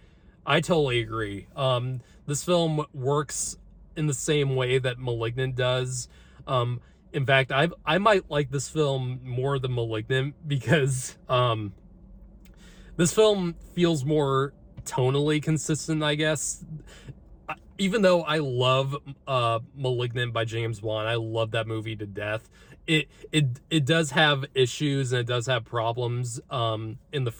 agree. This film works in the same way that Malignant does. In fact, I might like this film more than Malignant, because this film feels more tonally consistent, I guess. Even though I love Malignant by James Wan, I love that movie to death. It does have issues, and it does have problems in the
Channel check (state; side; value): identical; both; correlation 1.00